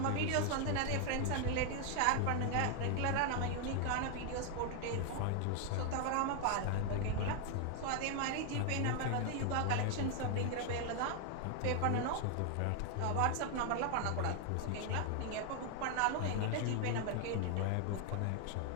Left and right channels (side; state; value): both; different; correlation 0.00